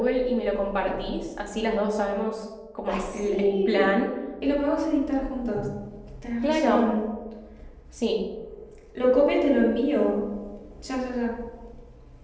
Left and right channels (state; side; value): identical; both; correlation 1.00